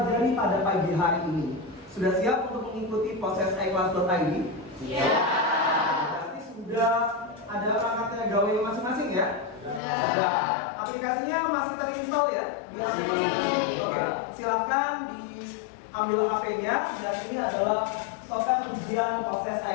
pada pagi hari ini. Sudah siap untuk mengikuti proses iClass.id? Siap. Berarti sudah ada perangkatnya gawe masing-masing ya? Sudah. Aplikasinya masih terinstall ya di HP masing-masing? Oke. Silakan diambil HP-nya dan ini adalah software ujian proses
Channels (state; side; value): drops out; right; at 9.8 s